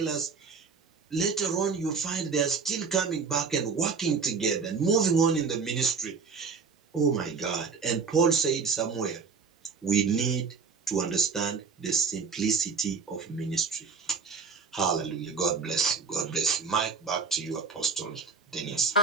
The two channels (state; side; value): quieter; left; 5.3 dB